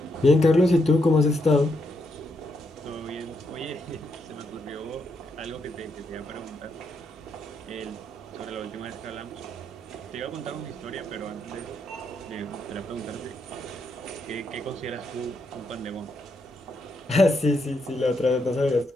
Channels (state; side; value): normal; both; correlation 0.79